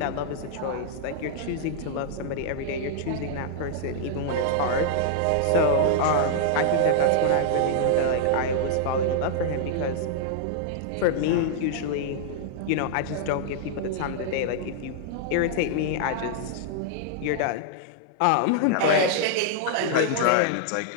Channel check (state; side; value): different; both; correlation -0.01